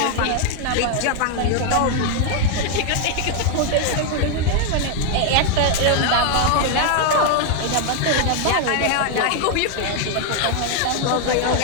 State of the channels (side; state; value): both; different; correlation 0.00